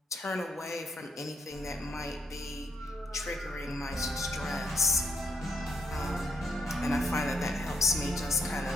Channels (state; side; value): normal; both; correlation 0.74